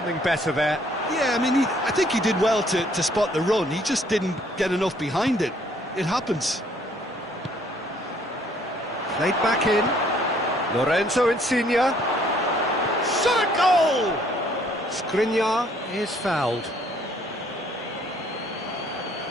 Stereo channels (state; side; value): normal; both; correlation 0.63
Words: better there. Yeah, I mean, I think he did well to spot the run. He just didn't get enough behind it. It happens. Played back in. Lorenzo Insigne. Shot a goal! Skriniar is fouled.